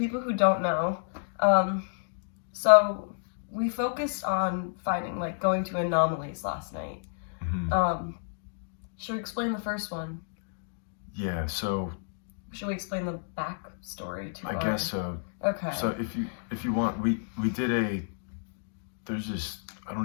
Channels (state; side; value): silent; right; digital silence